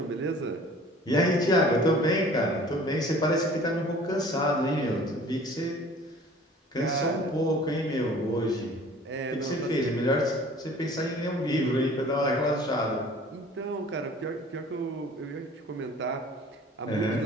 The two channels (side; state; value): both; normal; correlation 0.49